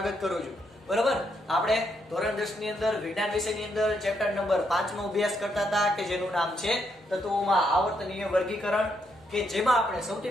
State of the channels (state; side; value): normal; both; correlation 0.77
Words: કરું છું. બરોબર, આપણે ધોરણ 10 ની અંદર વિજ્ઞાન વિષયની અંદર ચેપ્ટર નંબર 5 નો અભ્યાસ કરતા હતા કે જેનું નામ છે તત્વોમાં આવર્તનીય વર્ગીકરણ, કે જેમાં આપણે